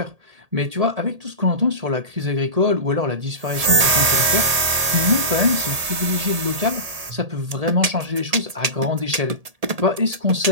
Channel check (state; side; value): late; left; 1.8 ms